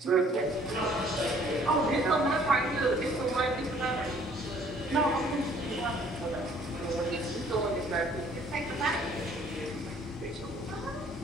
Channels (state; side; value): normal; both; correlation 0.58